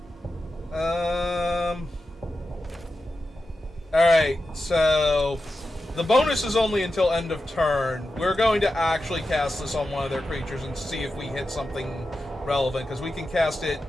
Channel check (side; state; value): both; normal; correlation 0.91